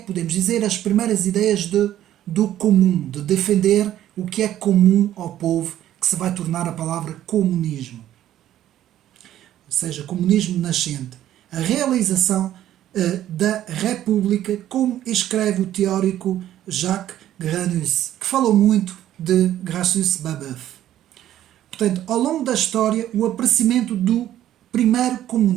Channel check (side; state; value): left; quieter; 12.3 dB